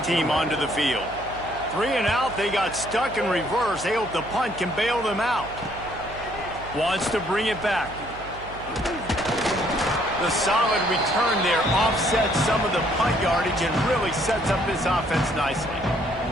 team onto the field. 3 and out, they got stuck in reverse. They hope the punt can bail them out. Wants to bring it back. The solid return there offsets some of the punt yardage and really sets up this offense nicely.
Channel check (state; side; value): noise; right; hum, 15 dB below the sound